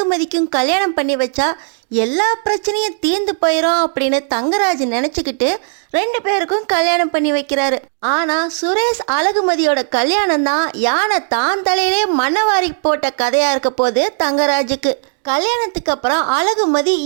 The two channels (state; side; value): silent; left; digital silence